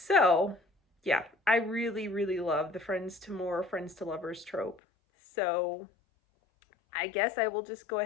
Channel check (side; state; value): right; drops out; at 4.8 s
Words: yeah, I really, really love the Friends to More, Friends to Lovers trope. So I guess I will just go